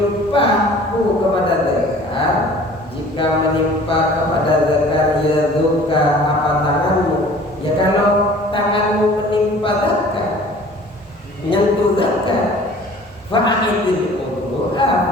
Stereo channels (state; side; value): normal; both; correlation 0.48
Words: kepada zakar, jika menimpa kepada zakar yaduka apa tanganmu, ya kalau tanganmu menimpa zakar, menyentuh zakar, fa'idil wudu'a,